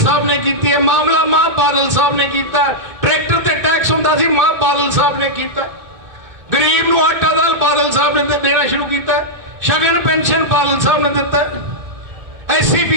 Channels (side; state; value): left; late; 2.5 ms